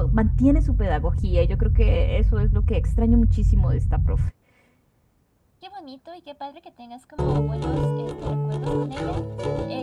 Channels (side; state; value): both; identical; correlation 1.00